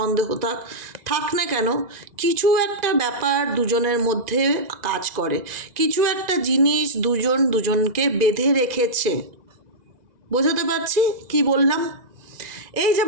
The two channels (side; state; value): left; late; 2.0 ms